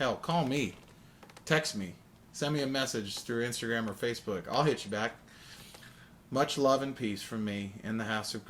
call me. Text me. Send me a message through Instagram or Facebook. I'll hit you back. Much love and peace from me in the House of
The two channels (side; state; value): both; identical; correlation 1.00